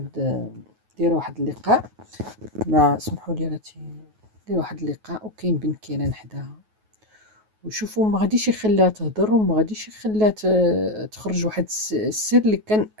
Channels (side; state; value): left; late; 9.3 ms